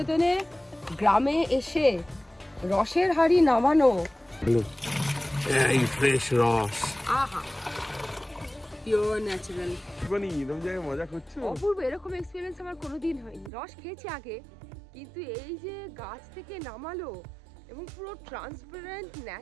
গ্রামে এসে রসের হাড়ি নামানো, এই ফ্রেশ রস, আহা পিওর ন্যাচারাল। মানে এরকম জায়গায় মজা করছো? অপূর্ব, এরকম এক্সপিরিয়েন্স আমার কোনোদিন হয়নি। রস খেয়েছি আগে, কিন্তু এই যে গাছ থেকে নামালো এবং পুরো ট্রান্সপারেন্ট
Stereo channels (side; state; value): left; drops out; at 13.5 s